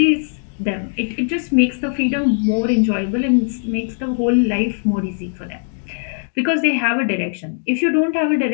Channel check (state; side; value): silent; right; digital silence